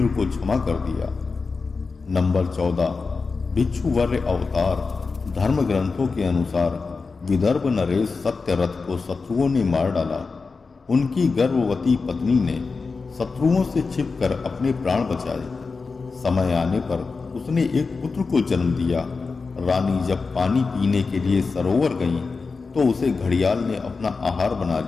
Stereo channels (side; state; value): right; quieter; 4.4 dB